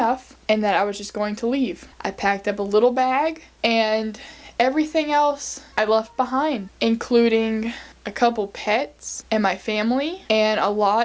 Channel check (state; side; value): identical; both; correlation 1.00